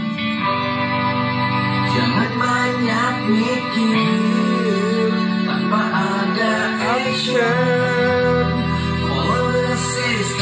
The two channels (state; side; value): identical; both; correlation 1.00